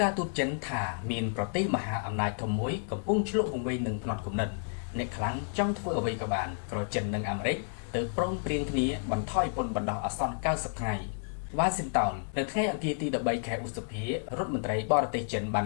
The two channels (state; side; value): silent; right; digital silence